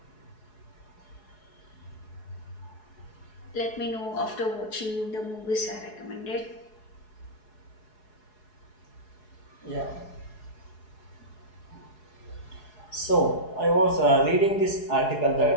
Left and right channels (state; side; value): late; right; 4.7 ms